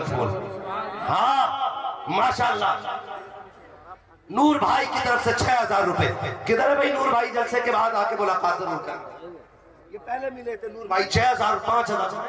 फूल। हाँ माशाल्लाह। नूर भाई की तरफ से 6000 रुपए। किधर है भाई नूर भाई? जलसे के बाद आके मुलाकात जरूर कर। ये पहले मिले थे नूर भाई 6000 5000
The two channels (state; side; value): identical; both; correlation 1.00